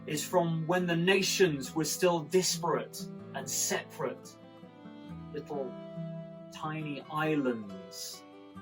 is from when the nations were still disparate and separate, little tiny islands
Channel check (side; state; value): both; identical; correlation 1.00